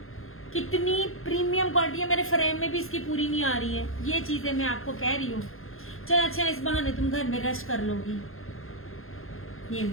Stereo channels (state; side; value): late; right; 0.61 ms